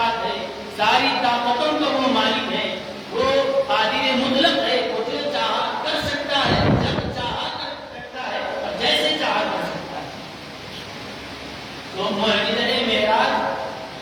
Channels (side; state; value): both; identical; correlation 1.00